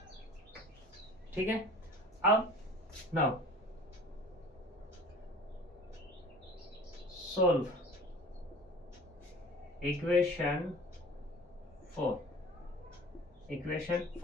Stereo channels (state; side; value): normal; both; correlation 0.43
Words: ठीक है, अब नाउ सोल्व इक्वेशन 4।